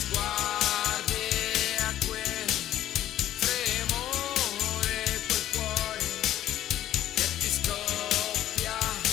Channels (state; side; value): quieter; right; 12.6 dB